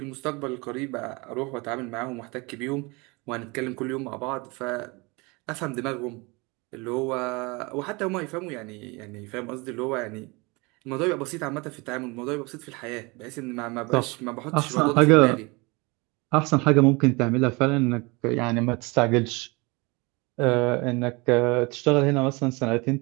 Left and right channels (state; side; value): quieter; left; 26.6 dB